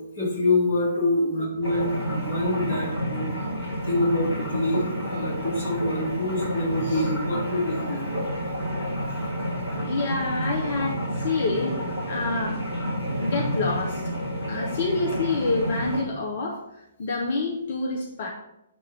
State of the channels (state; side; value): inverted; both; correlation -0.66